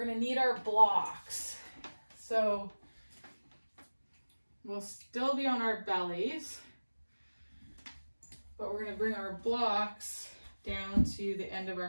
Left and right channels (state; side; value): inverted; both; correlation -1.00